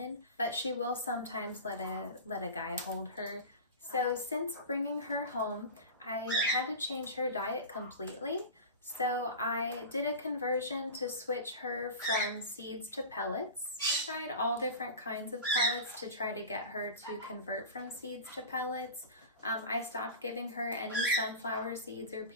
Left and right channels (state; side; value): inverted; both; correlation -0.30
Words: but she will sometimes let a guy hold her. So since bringing her home, I had to change her diet completely. So I did a conversion to switch her from seeds to pellets. I tried all different kinds of pellets to try to get her to convert from seeds to pellets. I stopped giving her any sunflower seeds or